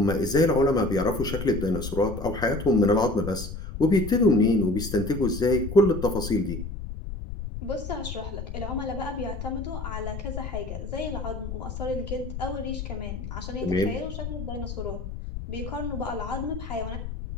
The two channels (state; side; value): noise; left; rumble, 7 dB below the sound